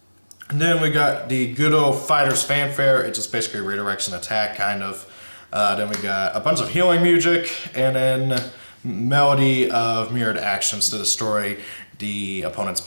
And then we got the good old Fighter's Fanfare. It just basically redirects an attack, kind of. Then we got a bunch of healing music, and then melody of mirrored actions to destroy the opponent's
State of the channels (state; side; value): inverted; both; correlation -1.00